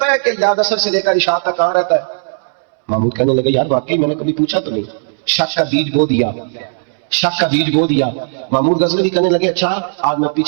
ہے کہ یاد اثر سے لے کر اشاعت تک کہاں رہتا ہے؟ محمود کہنے لگے یار واقعی میں نے کبھی پوچھا تو نہیں، شک کا بیج بو دیا، شک کا بیج بو دیا۔ محمود غزنوی کہنے لگے اچھا آج میں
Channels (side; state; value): left; silent; 66 dB below the other